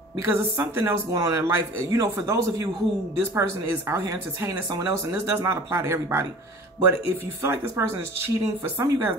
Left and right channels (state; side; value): normal; both; correlation 0.43